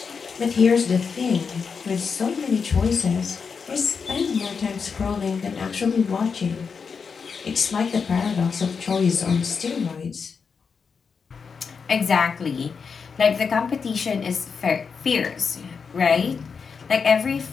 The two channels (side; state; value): right; quieter; 5.7 dB